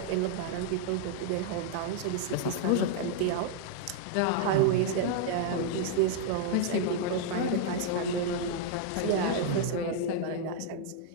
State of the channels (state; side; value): different; both; correlation -0.01